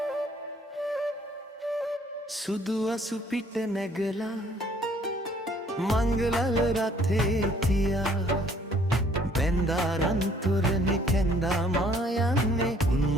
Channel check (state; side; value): normal; both; correlation 0.61